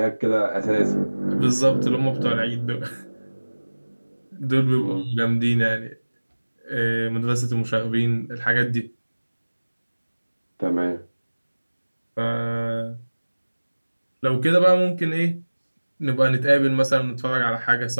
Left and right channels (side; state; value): both; inverted; correlation -1.00